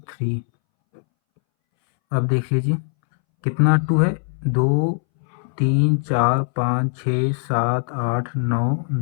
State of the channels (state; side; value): silent; right; 63 dB below the other